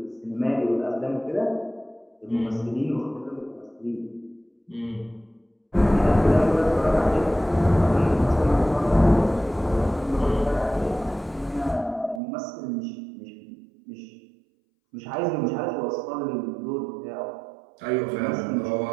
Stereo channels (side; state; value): left; drops out; at 12.2 s